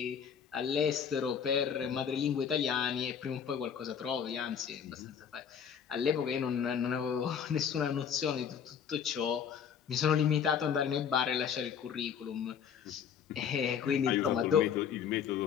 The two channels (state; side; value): quieter; right; 7.6 dB